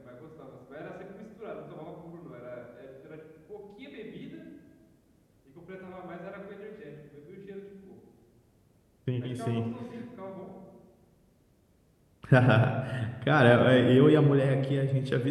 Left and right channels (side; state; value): both; identical; correlation 1.00